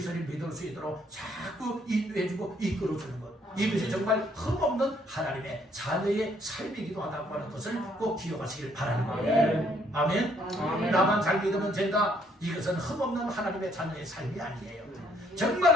믿을 수 있도록 자꾸 인도해주고 이끌어주는 것, 이것이 정말 흠없는 하나님의 자녀의 삶이기도 하다고 하는 것을 꼭 기억하시길 바라는 거예요. 아멘. 나만 잘 믿으면 된다, 이것은 흠없는 하나님의 자녀의 삶이 아니에요. 정말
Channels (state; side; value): normal; both; correlation 0.67